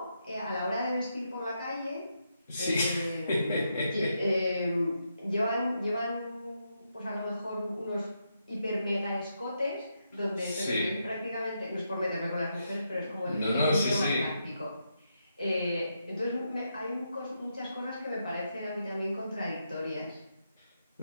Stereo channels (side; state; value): both; inverted; correlation -0.82